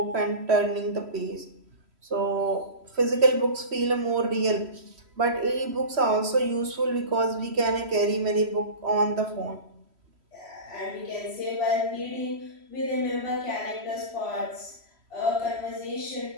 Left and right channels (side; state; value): left; late; 3.1 ms